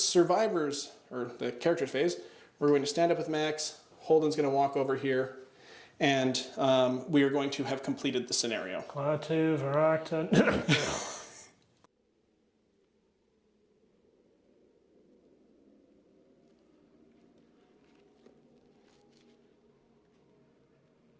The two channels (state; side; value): identical; both; correlation 1.00